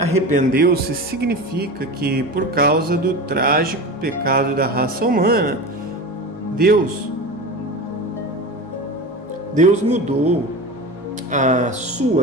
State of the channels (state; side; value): normal; both; correlation 0.29